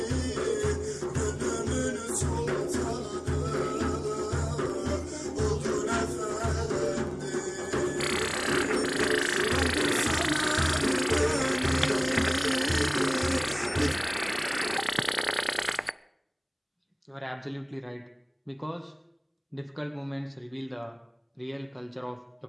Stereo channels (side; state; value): both; identical; correlation 1.00